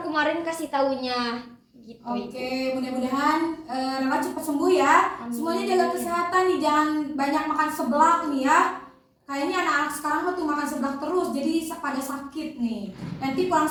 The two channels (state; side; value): identical; both; correlation 1.00